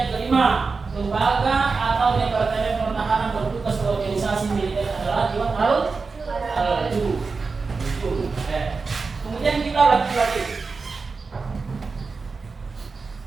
kelima, lembaga atau departemen pertahanan bertugas organisasi militer adalah Diwan Al-Jum. Kemudian kita lagi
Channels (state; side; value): quieter; left; 4.5 dB